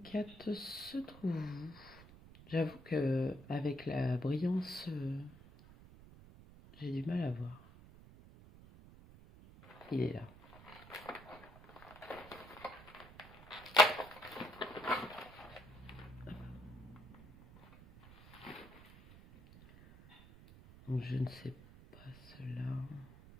4 se trouve où? J'avoue que avec la brillance, j'ai du mal à voir. Il est là. Donc je ne sais pas cela.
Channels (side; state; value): right; noise; rumble, 19 dB below the sound